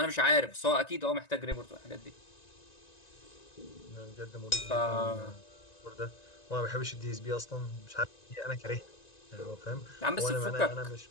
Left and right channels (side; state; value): right; late; 1.9 ms